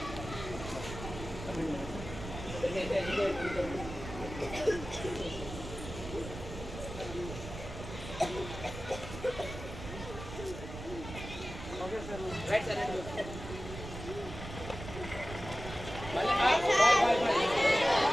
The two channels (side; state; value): right; noise; rumble, 10 dB below the sound